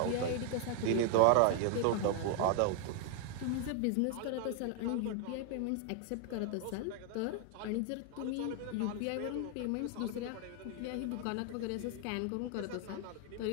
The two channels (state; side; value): different; both; correlation 0.00